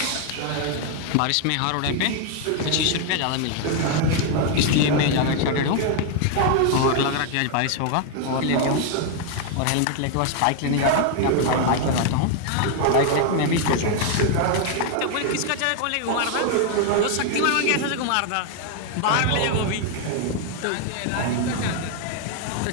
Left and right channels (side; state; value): both; different; correlation 0.00